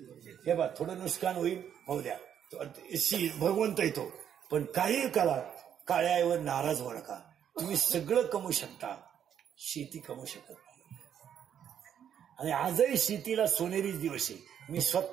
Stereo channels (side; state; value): left; quieter; 9.1 dB